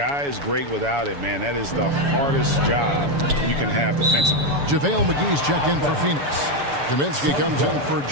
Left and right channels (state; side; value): late; left; 7.1 ms